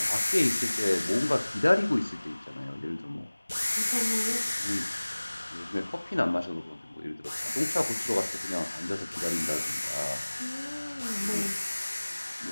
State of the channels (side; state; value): both; inverted; correlation -1.00